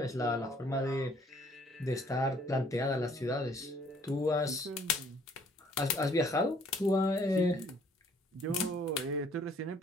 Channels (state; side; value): normal; both; correlation 0.60